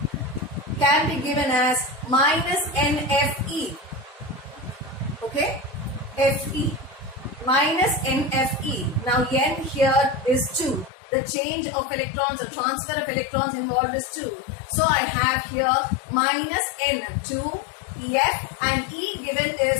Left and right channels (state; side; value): drops out; right; at 10.9 s